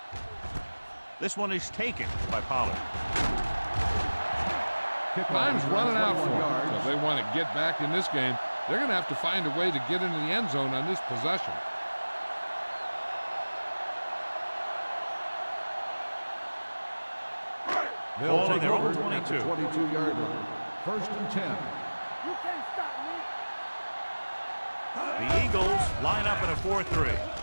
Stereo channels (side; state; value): both; inverted; correlation -1.00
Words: This one is taken by Pollard. Time's running out for them. So if they want to get back in this game, they're going to have to find a way to get into the end zone on this possession. Ball on their own over at the 22. 22-yard line. First and 10. You can't stop me. The Eagles line up in a 4-3.